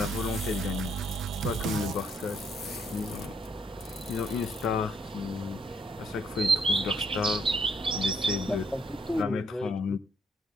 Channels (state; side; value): normal; both; correlation 0.70